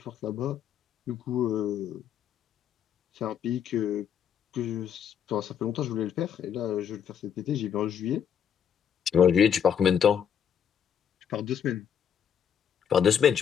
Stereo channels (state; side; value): quieter; right; 8.3 dB